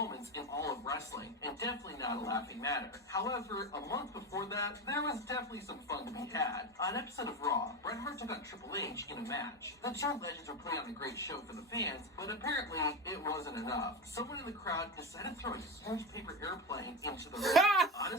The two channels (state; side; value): normal; both; correlation 0.19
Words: in all of wrestling, and definitely not a laughing matter. However, a month before that, there was definitely some fun to be had. On an episode of Raw, Bret Hart took on Triple H in a match. The two legends were putting on a great show for the fans, but apparently it wasn't enough. Someone in the crowd decided to throw a huge paper airplane into the ring.